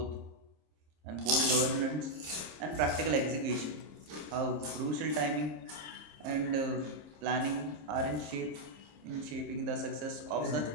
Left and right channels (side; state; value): left; late; 26 ms